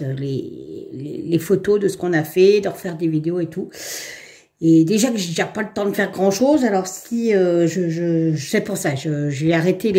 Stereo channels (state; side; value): identical; both; correlation 1.00